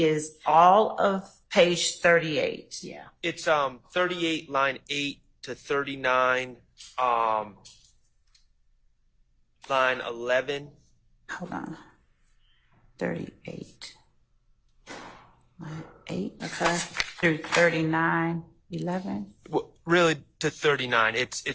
all of page 38. Yeah. It's 38 line 8 to 39 line 11. Hold on. 38. Line 8. Okay. Through 39, 11. Well, really to 39. It's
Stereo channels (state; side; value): identical; both; correlation 1.00